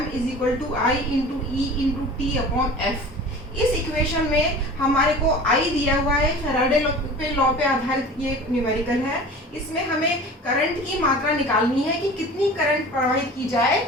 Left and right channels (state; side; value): normal; both; correlation 0.39